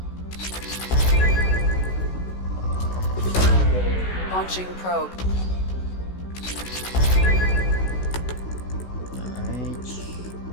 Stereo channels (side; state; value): right; late; 16 ms